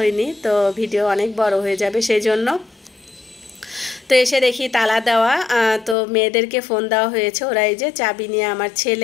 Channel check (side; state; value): right; drops out; at 6.0 s